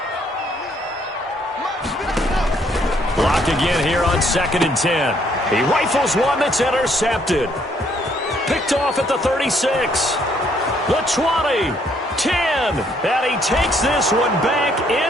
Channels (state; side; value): normal; both; correlation 0.67